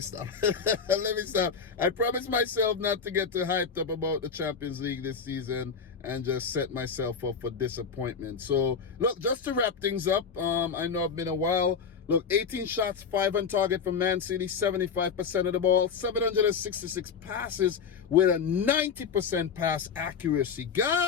I promised myself not to get too hyped up about the Champions League this season and just set myself up for disappointment. So, look, just to wrap things up, I know it's been a while. Look, 18 shots, 5 on target from Man City, 75% of the ball, 766 passes with a 90% pass accuracy.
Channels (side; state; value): right; quieter; 6.1 dB